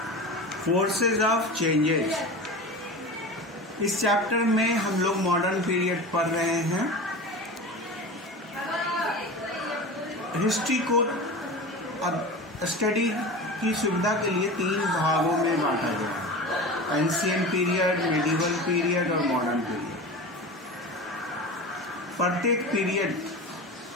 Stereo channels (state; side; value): normal; both; correlation 0.31